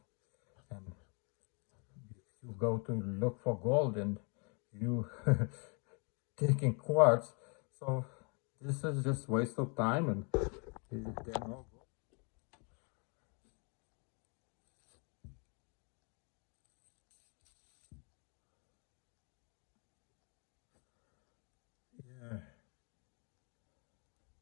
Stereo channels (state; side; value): quieter; right; 35.6 dB